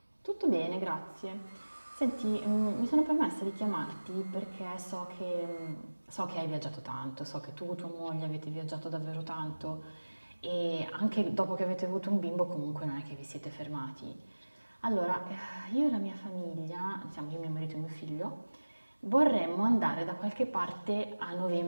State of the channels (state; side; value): inverted; both; correlation -1.00